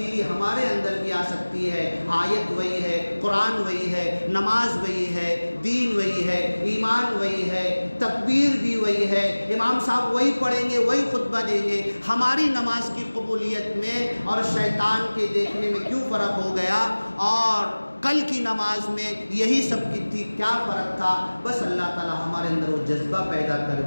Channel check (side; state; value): both; inverted; correlation -1.00